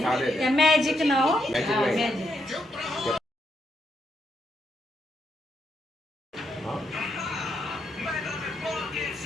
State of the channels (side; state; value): both; normal; correlation 0.79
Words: त्या मॅजिक ना हो मॅजिक.